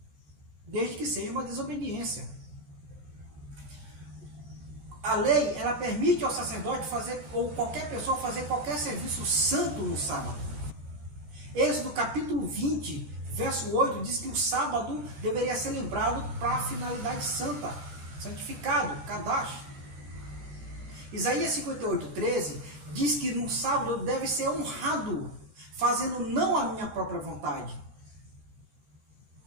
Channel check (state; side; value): late; left; 13 ms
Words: desde que seja uma desobediência. A lei, ela permite ao sacerdote fazer, ou qualquer pessoa fazer qualquer serviço santo no sábado. Êxodo capítulo 20, verso 8, diz que o sábado deveria ser lembrado para a finalidade santa, santificado, Kadash. Isaías 58, 13 diz que no sábado deve ser honrado, fazendo não a minha própria vontade,